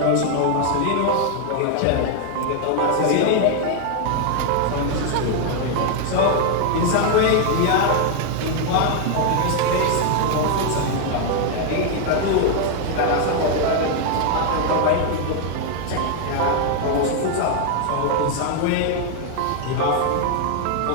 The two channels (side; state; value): both; different; correlation 0.00